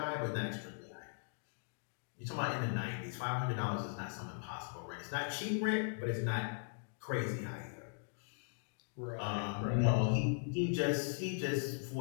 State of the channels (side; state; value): right; silent; digital silence